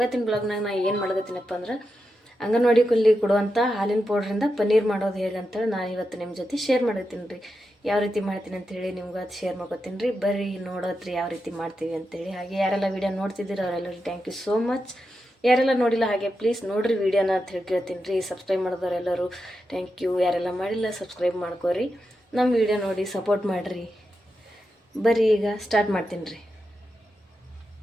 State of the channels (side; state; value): both; normal; correlation 0.88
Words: ಬ್ಲಾಗ್ನಾಗ ನಾನು ಏನು ಮಾಡಕತ್ತೀನಪ್ಪ ಅಂದ್ರೆ ಅಂಗನವಾಡಿಯಲ್ಲಿ ಕೊಡುವಂಥ ಹಾಲಿನ ಪೌಡ್ರಿಂದ ಪನ್ನೀರ್ ಮಾಡೋದು ಹೇಗೆ ಅಂತೇಳಿ ನಾನು ಇವತ್ತು ನಿಮ್ಮ ಜೊತೆ ಶೇರ್ ಮಾಡತ್ತೀನಿ ರೀ. ಯಾವ ರೀತಿ ಮಾಡ್ತೀನಿ ಅಂತೇಳಿ ನಿಮ್ಗೆ ಅದು ಶೇರ್ ಮಾಡ್ಕೊತೀನಿ ರೀ. ಬರ್ರಿ ನೋಡೋದ್ರಿ ಯಾವ ರೀತಿ ಮಾಡ್ತೀವಿ ಅಂತೇಳಿ. ಹಾಗೆ ಯಾರೆಲ್ಲ ವೀಡಿಯೋ ನೋಡ್ತಿದ್ದೀರಿ ಅವರೆಲ್ಲರೂ ಥ್ಯಾಂಕ್ ಯು ಸೋ ಮಚ್. ಯಾರೆಲ್ಲ ನೋಡಿಲ್ಲ ಹಾಗೆ ಪ್ಲೀಸ್ ನೋಡಿರಿ ವೀಡಿಯೋನ ಅಂತ ಹೇಳಿ ಕೇಳ್ತೀನಿ ರೀ. ಸಬ್ಸ್ಕ್ರೈಬ್ ಮಾಡಿದವರೆಲ್ಲರೂ ಥ್ಯಾಂಕ್ ಯು. ಯಾರೆಲ್ಲ ಮಾಡಿಲ್ಲ ಸಬ್ಸ್ಕ್ರೈಬ್ ಮಾಡ್ಕೋರಿ, ನಮ್ಮ ವಿಡಿಯೋ ನೋಡಿ ಸಪೋರ್ಟ್ ಮಾಡಿರಿ. ಬರ್ರಿ ಈಗ ಸ್ಟಾರ್ಟ್ ಮಾಡ್ತೀನಿ ರೀ.